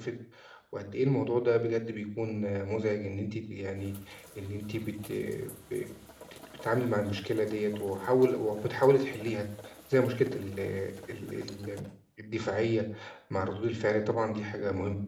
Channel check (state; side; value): identical; both; correlation 1.00